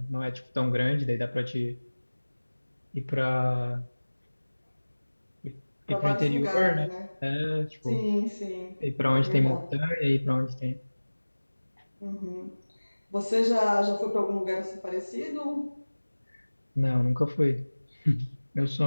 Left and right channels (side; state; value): both; inverted; correlation -1.00